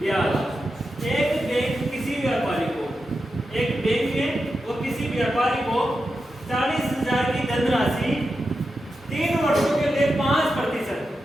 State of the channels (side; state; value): both; normal; correlation 0.89